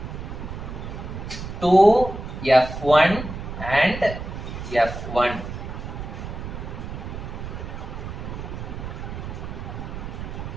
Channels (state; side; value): noise; right; rumble, 8 dB below the sound